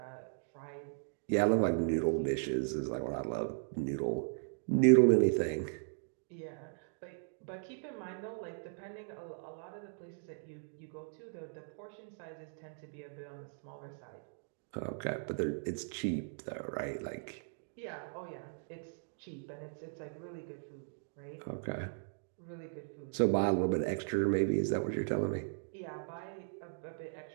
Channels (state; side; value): silent; left; digital silence